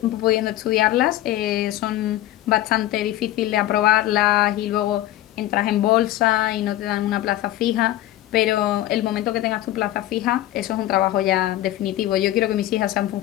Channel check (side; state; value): right; quieter; 14.6 dB